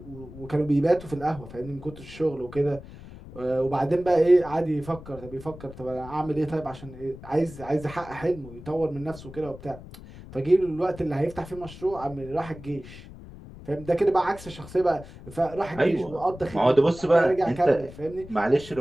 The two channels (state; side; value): noise; left; rumble, 16 dB below the sound